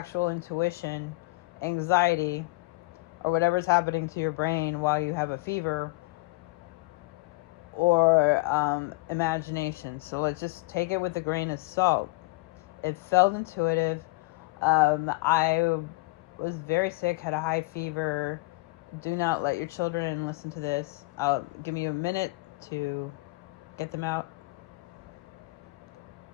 intuition, anxiety, or whatever's happening to your brain while you have a fever, or imagination. So let's just take it with a grain of salt. It felt intuitive. I was very sick, had a high fever. Do not let your children listen to this. I'll give you a minute to get them out.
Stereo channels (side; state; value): right; quieter; 24.1 dB